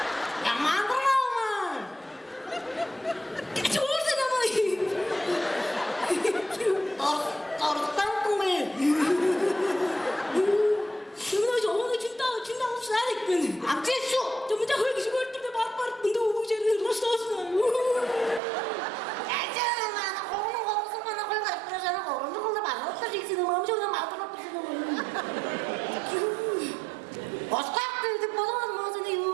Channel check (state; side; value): drops out; left; at 18.4 s